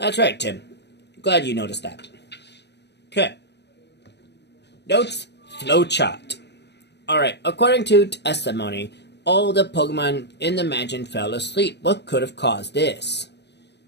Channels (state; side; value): late; right; 0.50 ms